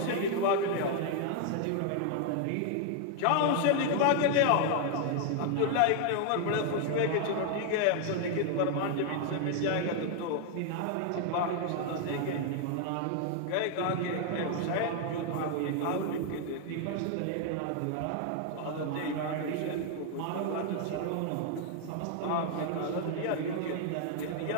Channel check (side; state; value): both; different; correlation 0.00